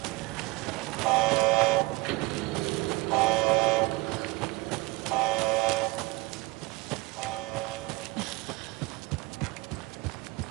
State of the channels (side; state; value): left; quieter; 23.4 dB